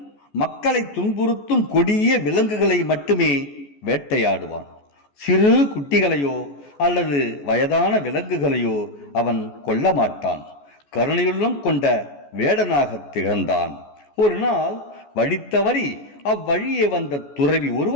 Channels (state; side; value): late; right; 14 ms